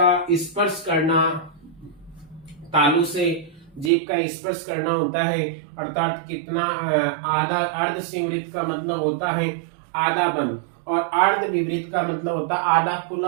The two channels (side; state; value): left; drops out; at 3.9 s